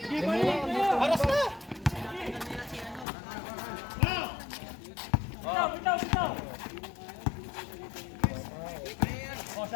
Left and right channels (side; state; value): right; drops out; at 3.1 s